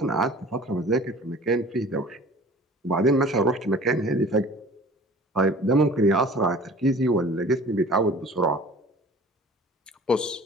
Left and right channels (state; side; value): normal; both; correlation 0.45